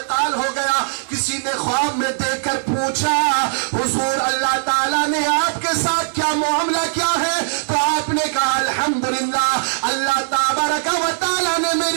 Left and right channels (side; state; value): left; silent; 62 dB below the other